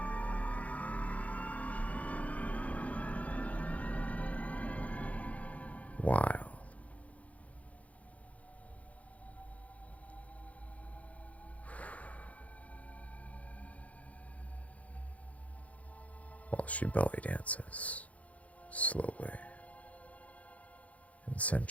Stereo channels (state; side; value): late; right; 0.068 ms